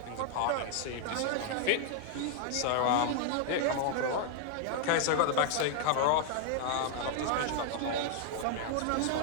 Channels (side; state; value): both; different; correlation 0.00